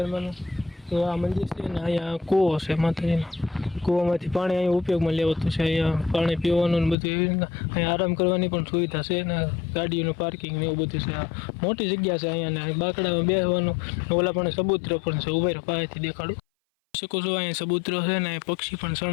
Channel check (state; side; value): drops out; right; at 7.0 s